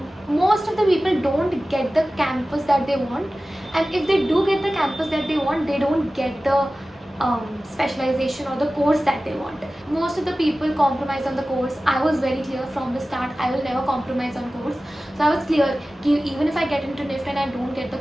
most of the people don't get the campus that they want, and if they do get the campus that they want, they don't get the specialization or the course that they want. Most of the people compromise on the course. I was very clear from the start, I will never compromise on course. So I was clear that even if I get into NIFT and I don't get the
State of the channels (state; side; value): normal; both; correlation 0.96